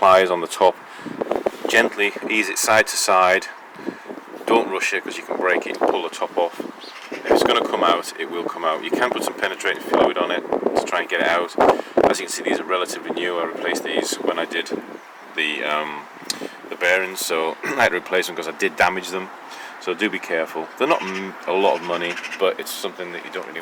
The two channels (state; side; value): identical; both; correlation 1.00